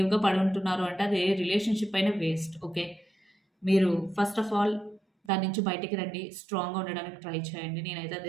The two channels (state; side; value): drops out; left; at 5.3 s